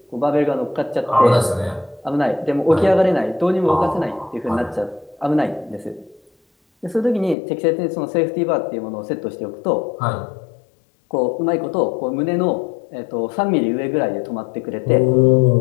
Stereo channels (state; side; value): drops out; right; at 7.4 s